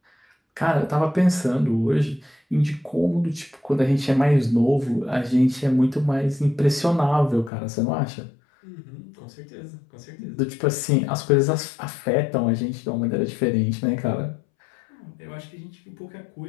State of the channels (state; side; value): drops out; right; at 7.5 s